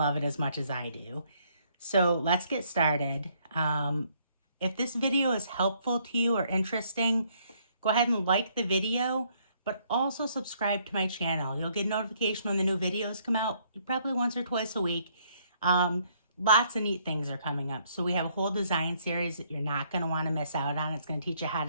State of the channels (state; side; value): inverted; both; correlation -0.68